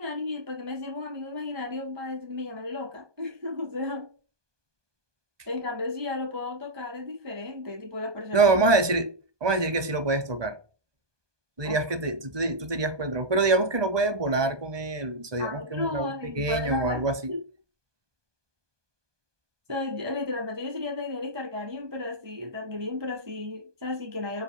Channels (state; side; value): late; left; 1.2 ms